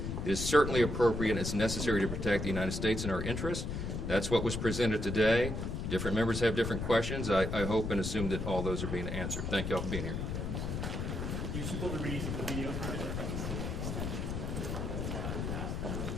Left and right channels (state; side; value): noise; left; rumble, 3 dB below the sound